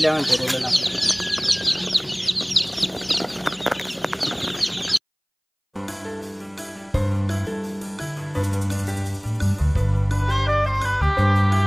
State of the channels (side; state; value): both; identical; correlation 1.00